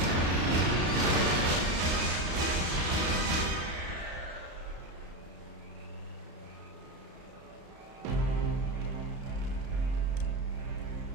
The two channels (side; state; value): left; late; 33 ms